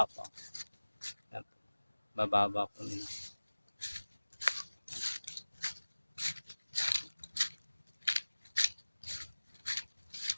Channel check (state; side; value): inverted; both; correlation -1.00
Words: Bababa po nila.